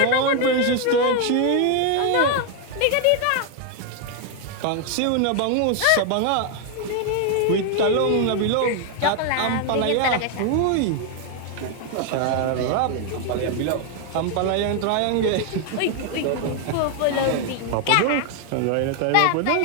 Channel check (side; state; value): both; different; correlation 0.00